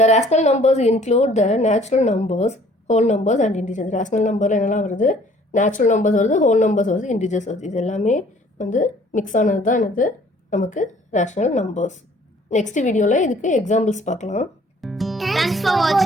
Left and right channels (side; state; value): both; normal; correlation 0.56